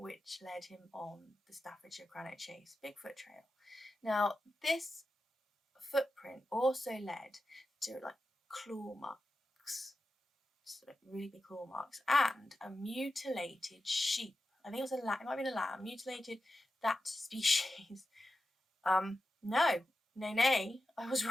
led him on the Staffordshire Cannock Chase Bigfoot Trail. Now, this footprint also led to like claw marks, so really big claw marks, and a mutilated sheep. I think it was a lamb. It might have been a lamb. Mutilated that species. No, I was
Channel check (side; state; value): both; normal; correlation 0.92